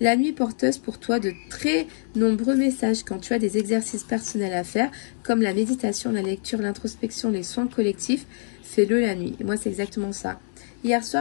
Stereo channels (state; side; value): silent; right; digital silence